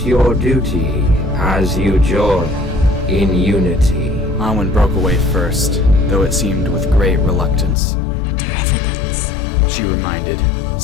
your duty as you join in unity. Anwen broke away first, though it seemed with great reluctance. Their evidence. She reminded,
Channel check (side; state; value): right; drops out; at 7.8 s